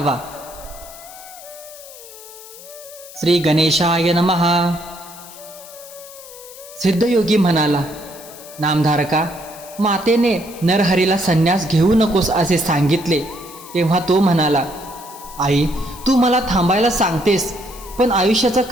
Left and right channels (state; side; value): noise; left; hiss, 17 dB below the sound